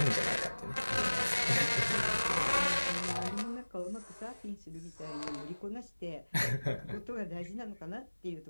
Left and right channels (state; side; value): inverted; both; correlation -1.00